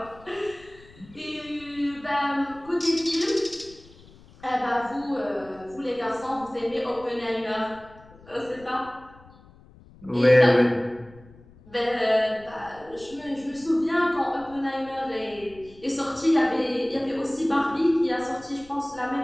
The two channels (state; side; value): noise; left; rumble, 23 dB below the sound